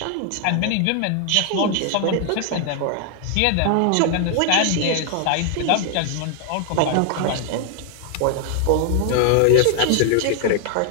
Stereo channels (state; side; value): different; both; correlation 0.00